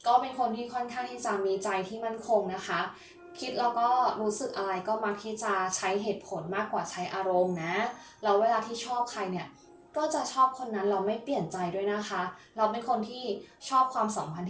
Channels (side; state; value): both; identical; correlation 1.00